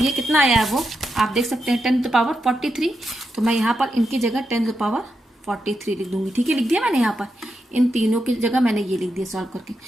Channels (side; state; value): both; normal; correlation 0.86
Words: कितना आया है वो आप देख सकते हैं 10⁻43, तो मैं यहाँ पर इनकी जगह 10⁻43 लिख दूंगी, ठीक है। लिख दिया मैंने, यहाँ पर इन तीनों की जगह मैंने ये लिख दिया सॉल्व करके।